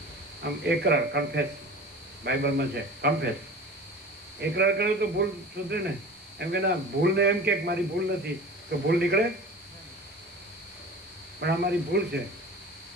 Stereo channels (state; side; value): noise; left; hiss, 29 dB below the sound